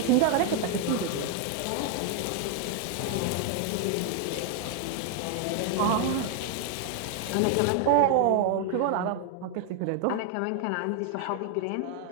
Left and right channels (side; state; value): both; different; correlation 0.00